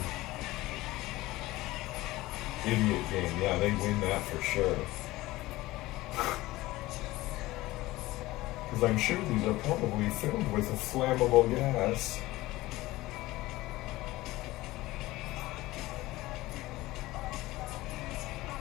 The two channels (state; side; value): quieter; right; 18.4 dB